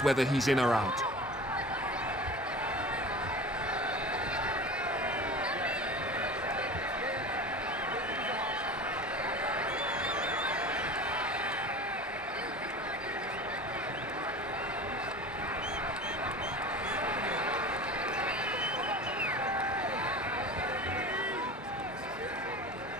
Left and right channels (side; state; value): both; normal; correlation 0.35